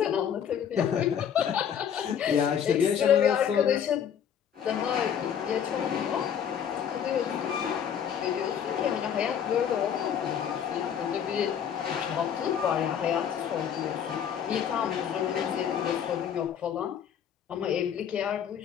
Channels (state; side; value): quieter; right; 8.5 dB